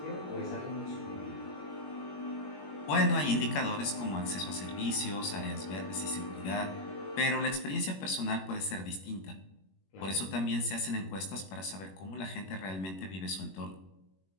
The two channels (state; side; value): late; right; 21 ms